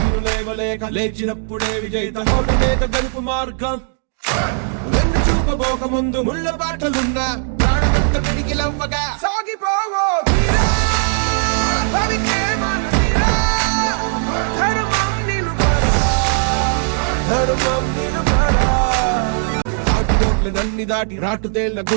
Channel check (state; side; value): silent; left; 67 dB below the other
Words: లేవలేక లేచినప్పుడే విజేత ఓటమేక గెలుపు మార్గం వెన్ను చూపబోక ముందు ముళ్ళ బాటలున్నా ప్రాణమంత పిడికిలవ్వగా సాగిపోవో తీరా భవికే మన తీరా ధర్మం నిలుపరా ధర్మం నిలుపరా ఆటుపోట్ల నన్ని దాటి రాటుతేళ్ల